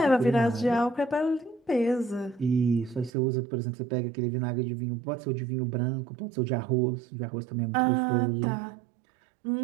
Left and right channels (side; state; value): left; drops out; at 3.1 s